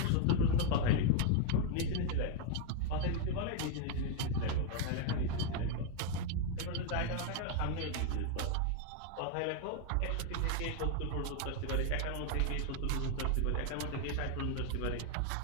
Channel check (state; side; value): different; both; correlation 0.01